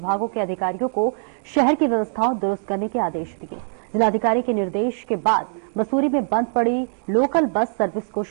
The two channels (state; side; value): silent; left; digital silence